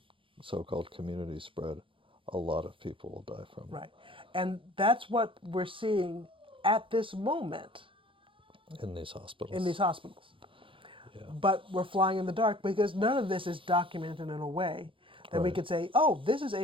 so-called community spread, a lot of people will die from Right. And that's what we're seeing at this moment it in these in hospitals. these hospitals. Yeah. But we're flying in the dark because none of this is documented in a way that we Right. could say, oh, this is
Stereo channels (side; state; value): left; late; 0.25 ms